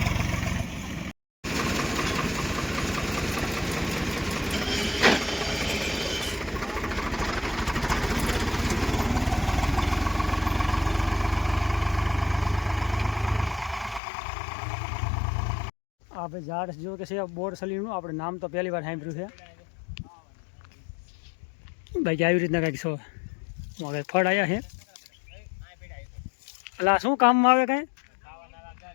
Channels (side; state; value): right; drops out; at 14.0 s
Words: આ ભાઈ ઝાડ જો કે છે બોરસલીનું. આપણે નામ તો પહેલી વાર સાંભળ્યું છે. બાકી આવી રીતના કંઈક છો હવે ફળ આવ્યા છે. એટલે શું કામમાં આવે? કાંઈ